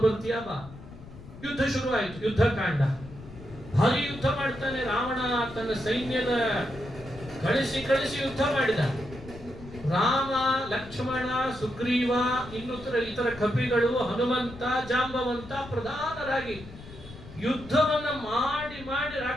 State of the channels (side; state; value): left; noise; rumble, 16 dB below the sound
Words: ಬರ್ತೀಯ ಬಾ. ಯುದ್ಧ ಶುರುವಾಯಿತು. ಯುದ್ಧ ಕಾಂಡ ಭಾರಿ ಯುದ್ಧ ಮಾಡ್ತಾನೆ ರಾವಣ. ತನ್ನ ಸೈನ್ಯದ ಕಳಿಸಿ ಯುದ್ಧ ಮಾಡಿದ. ರಾಮ, ಲಕ್ಷ್ಮಣ, ಸುಗ್ರೀವ, ಇತರ ಕಪಿಗಳು, ಹನುಮಂತ, ಜಾಂಬವಂತ ಪ್ರಧಾನರಾಗಿ ಯುದ್ಧವನ್ನ ಮಾಡಿ